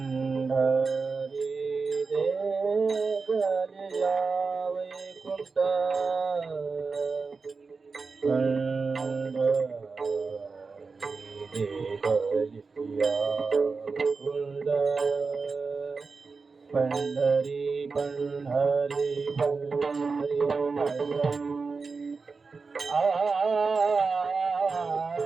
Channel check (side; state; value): left; quieter; 4.5 dB